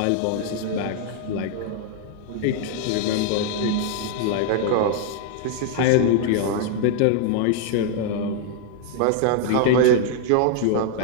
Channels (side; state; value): both; different; correlation 0.00